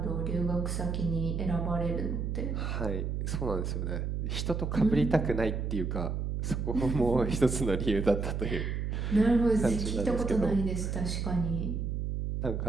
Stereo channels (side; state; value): right; noise; hum, 1 dB below the sound